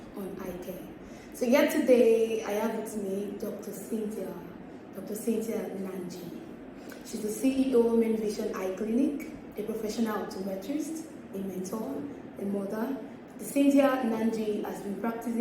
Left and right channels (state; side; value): identical; both; correlation 1.00